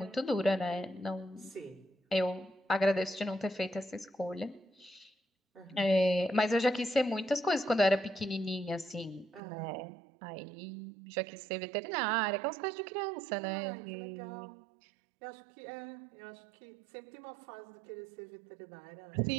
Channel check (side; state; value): left; drops out; at 9.4 s